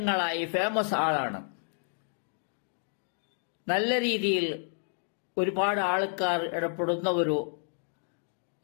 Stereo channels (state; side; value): silent; right; 57 dB below the other